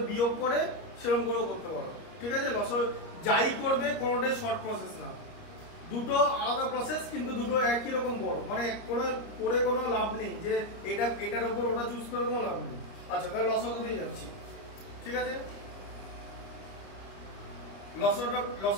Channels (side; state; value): right; late; 30 ms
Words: বিয়োগ করে সেরকম করেও করতে পারো, ঠিক আছে? যাই করবে কোনোটাই শর্ট প্রসেস না, দুটো আলাদা প্রসেস, কিন্তু দুটো একই রকম বড়। মানে করে কোনো লাভ নেই যে এটার উপর ওটা চুজ করে কোনো লাভ নেই। আচ্ছা, তাহলে লসাগু দিয়ে যাচ্ছি, ঠিক আছে?